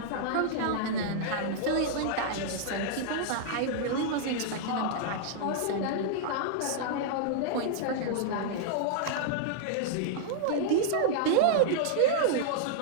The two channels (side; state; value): both; different; correlation -0.01